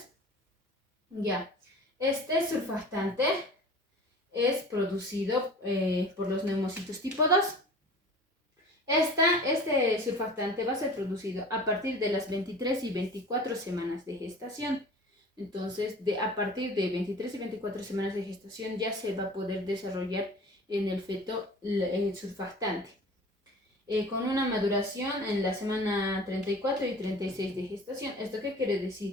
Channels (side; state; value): both; normal; correlation 0.41